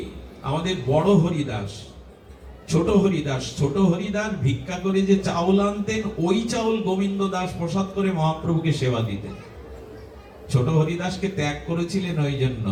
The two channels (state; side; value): identical; both; correlation 1.00